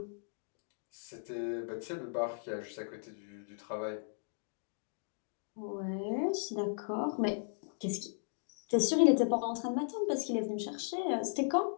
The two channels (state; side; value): silent; right; digital silence